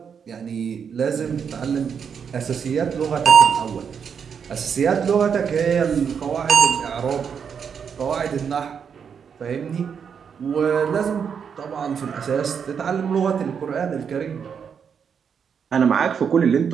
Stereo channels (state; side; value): quieter; left; 7.0 dB